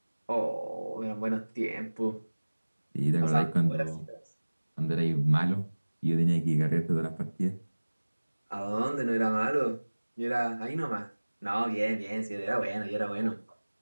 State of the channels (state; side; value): inverted; both; correlation -1.00